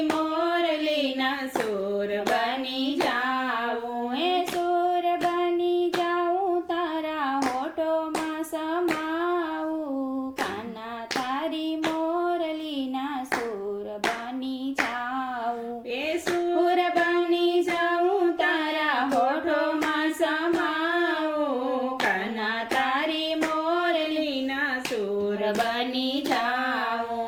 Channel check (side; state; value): both; identical; correlation 1.00